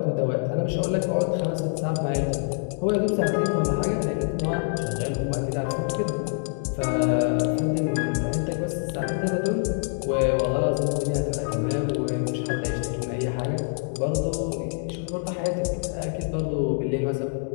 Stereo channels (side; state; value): right; silent; 57 dB below the other